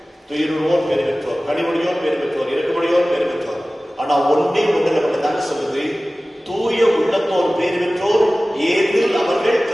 துயருவோர் பேர் பெற்றோர், கனிமொழியோர் பேர் பெற்றோர், இறக்குமொழியோர் பேர் பெற்றோர். ஆனா ஒன்றே ஒன்றில் மட்டும் தாங்க சொல்லுது, தூய உள்ளத்தோர் பேர் பெற்றோர், ஏதில் அவர்கள்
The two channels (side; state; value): both; normal; correlation 0.97